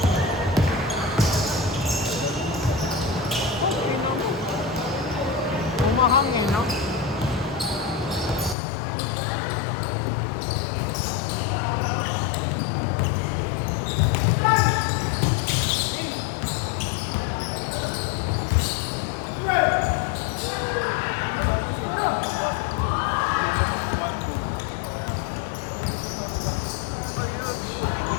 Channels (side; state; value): right; drops out; at 8.6 s